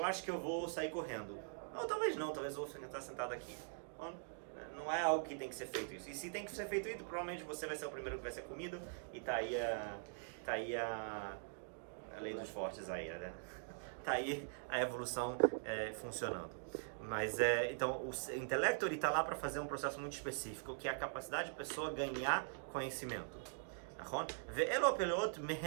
acho que eu vou sair correndo. Ou talvez não, talvez eu vou estar sentado aqui. Não é algo que tem que ser feito isso. E se tem que ser feito isso, provavelmente você vai ser o primeiro que vai ser comido. E tá aí a lei dos fortes aí, né? Tá aí a evolução funcionando. Mas então o intelecto ele está lá para fazer um processo muito específico, que é a capacidade da pessoa ganhar conhecimento.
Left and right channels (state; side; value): silent; left; digital silence